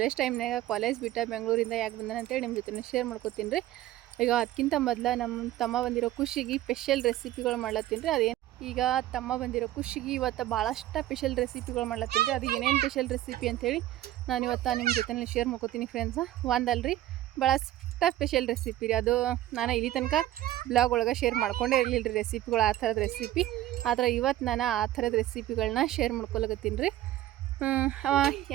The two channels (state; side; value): quieter; left; 14.2 dB